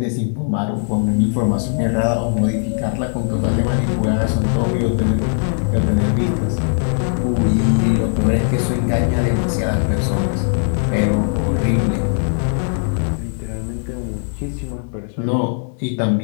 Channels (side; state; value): right; silent; 67 dB below the other